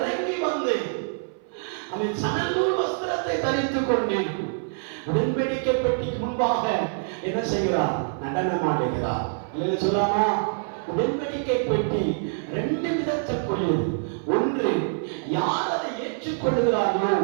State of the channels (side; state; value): left; silent; 57 dB below the other